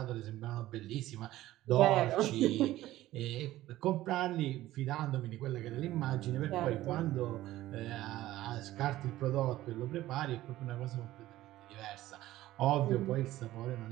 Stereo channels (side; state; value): left; quieter; 15.4 dB